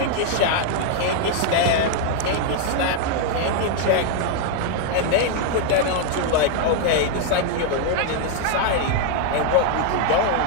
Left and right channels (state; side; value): different; both; correlation 0.00